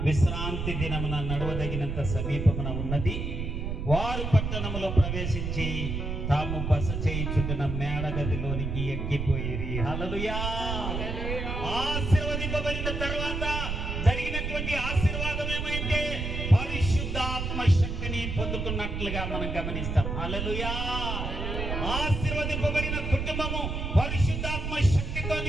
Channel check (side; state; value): right; noise; rumble, 3 dB below the sound